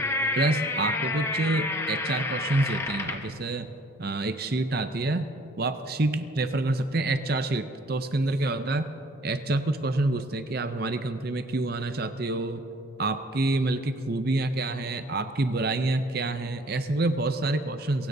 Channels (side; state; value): both; normal; correlation 0.56